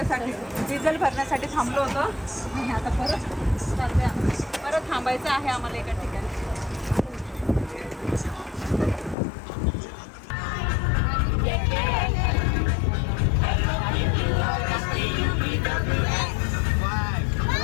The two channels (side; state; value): right; drops out; at 9.2 s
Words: डिझेल भरण्यासाठी थांबलो होतो आणि आता परत चाललोय आम्ही. परत थांबायचं आहे आम्हाला एका ठिकाणी.